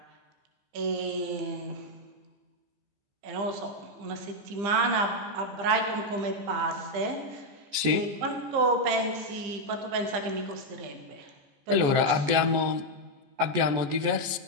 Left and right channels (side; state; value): left; late; 14 ms